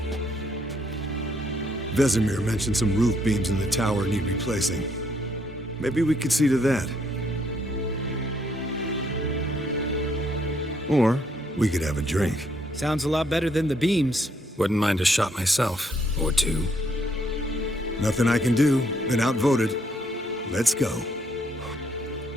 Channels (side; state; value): both; normal; correlation 0.70